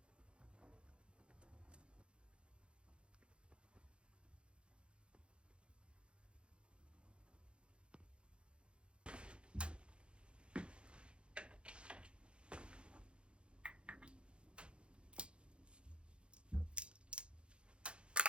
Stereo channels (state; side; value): late; left; 0.057 ms